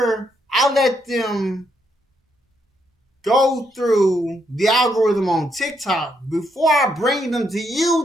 I let them go through the algorithm on TikTok, before I bring them to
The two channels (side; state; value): both; normal; correlation 0.76